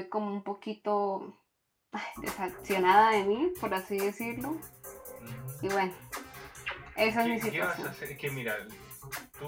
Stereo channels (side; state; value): both; identical; correlation 1.00